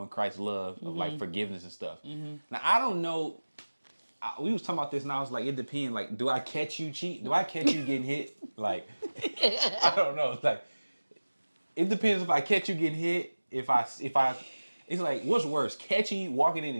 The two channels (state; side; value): inverted; both; correlation -1.00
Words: Christ's love, of like forgiveness and stuff. Mm-hmm. Now, I don't know. We was talking about this and I was like, it depends. Like, do I catch you cheat? Do I catch you getting hit? Like, I don't know. It's like, it depends if I catch you getting hit. If I, it's like, what's worse? Catching you, walking in